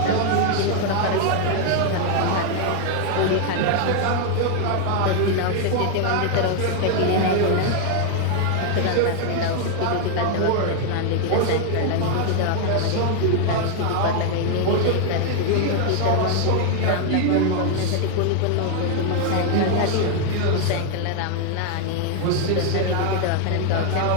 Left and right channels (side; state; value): both; different; correlation 0.00